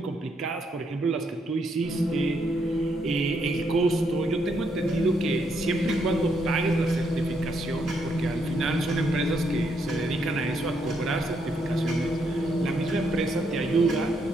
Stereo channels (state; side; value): normal; both; correlation 0.76